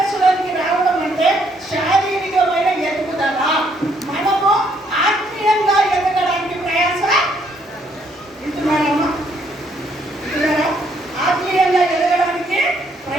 రావడం అంటే శారీరకమైన ఎదుగుదల. మనము ఆత్మీయంగా ఎదగడానికి ప్రయాస ఇంటున్నారమ్మా, ఇంటున్నారా? ఆత్మీయంగా ఎదగడానికి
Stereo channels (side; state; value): both; normal; correlation 0.69